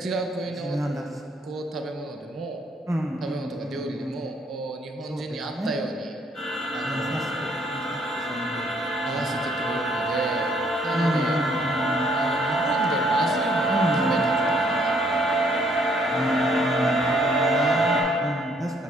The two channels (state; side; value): normal; both; correlation 0.66